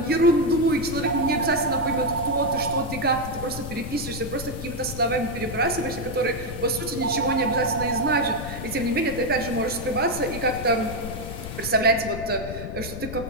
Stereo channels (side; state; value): left; noise; rumble, 9 dB below the sound